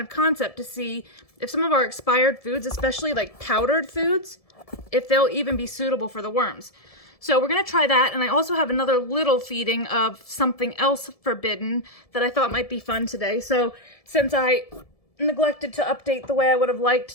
of concept to see if some of our expired foods, especially like powdered foods, if they'll even be suitable for the worms. So we're going to try that, and I also have another little feeding of something else forbidden that I thought might be fun today. So since I neglected to update the way I would have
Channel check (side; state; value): right; late; 1.7 ms